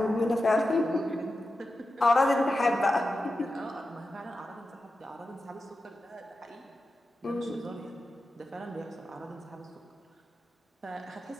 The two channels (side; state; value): both; normal; correlation 0.91